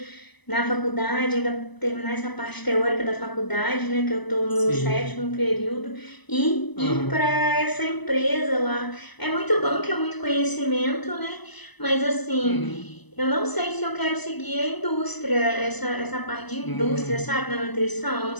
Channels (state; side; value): late; right; 1.0 ms